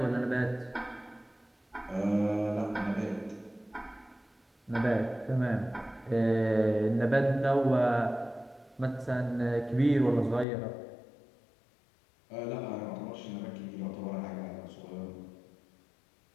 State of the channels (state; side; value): drops out; right; at 10.5 s